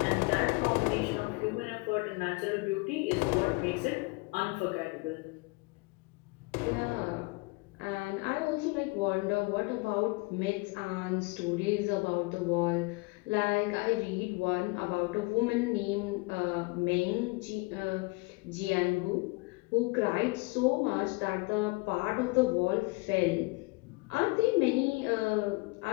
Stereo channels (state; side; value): quieter; right; 26.0 dB